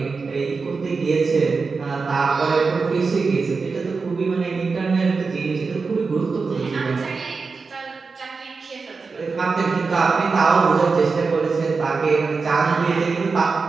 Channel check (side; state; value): left; quieter; 4.6 dB